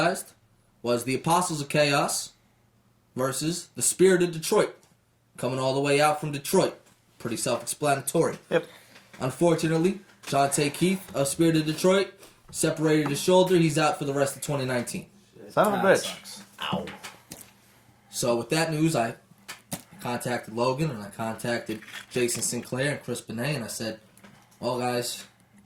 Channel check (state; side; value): identical; both; correlation 1.00